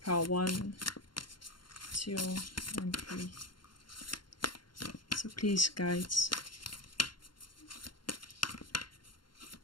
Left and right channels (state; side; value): late; right; 0.72 ms